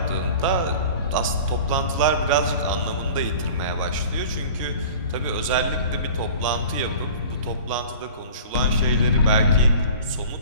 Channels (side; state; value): both; inverted; correlation -0.41